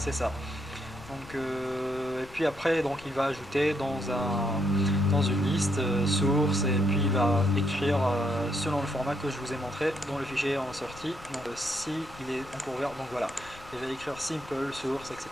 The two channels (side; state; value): left; noise; rumble, 19 dB below the sound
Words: ça. Donc, et puis après donc il va ajouter dans une liste source, et puis il va écrire selon le format que je vous ai montré dont le fichier est en sortie. Donc si il est encore ouvert, donc voilà, il va écrire simple source,